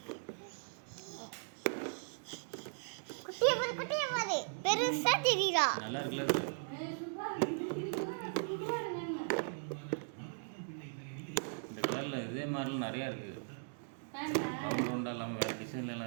பெருசா தெரியுதா? நல்லா இருக்குல்ல அது. இந்த கலரில் இதே மாதிரிலாம் நிறையா இருக்குது. ரவுண்ட் ரவுண்டாக இல்லாமல் வேறு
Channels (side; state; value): left; silent; digital silence